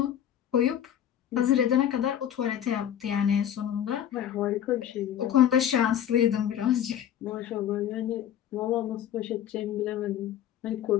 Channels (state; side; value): quieter; right; 10.3 dB